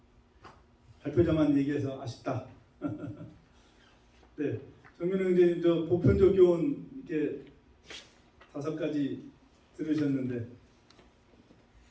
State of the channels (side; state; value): both; identical; correlation 1.00